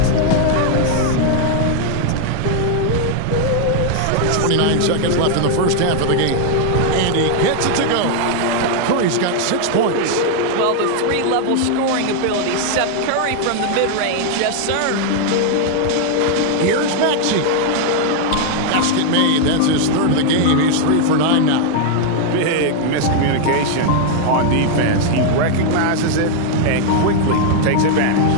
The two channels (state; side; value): different; both; correlation 0.00